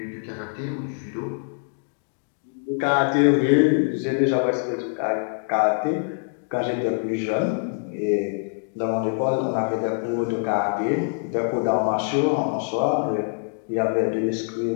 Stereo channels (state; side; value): silent; right; digital silence